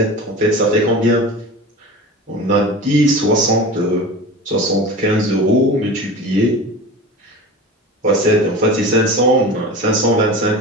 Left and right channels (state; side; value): normal; both; correlation 0.32